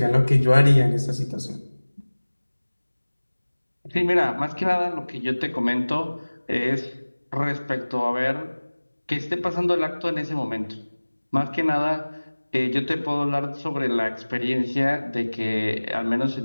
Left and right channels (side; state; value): both; inverted; correlation -1.00